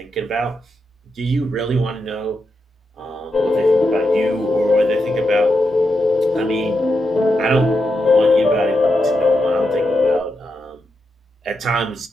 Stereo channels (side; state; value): both; normal; correlation 0.85